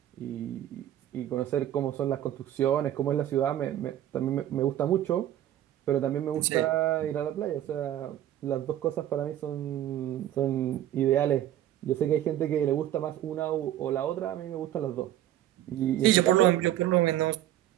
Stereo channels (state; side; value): quieter; left; 12.2 dB